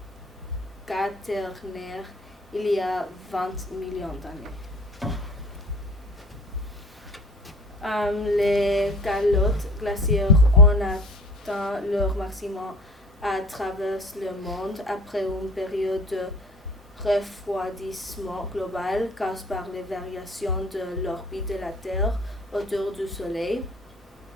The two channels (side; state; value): both; normal; correlation 0.46